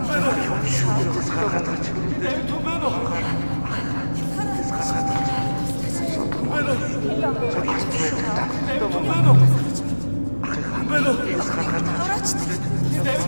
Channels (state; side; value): inverted; both; correlation -1.00